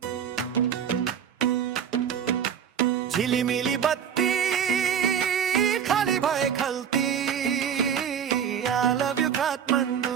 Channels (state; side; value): quieter; left; 8.3 dB